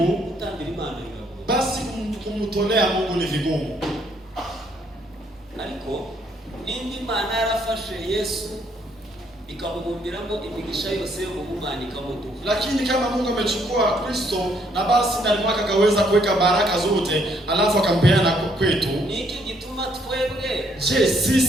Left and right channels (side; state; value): both; normal; correlation 0.68